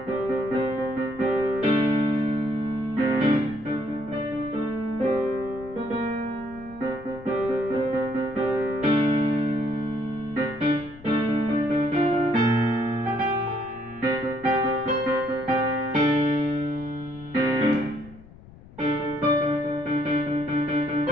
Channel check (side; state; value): left; noise; rumble, 20 dB below the sound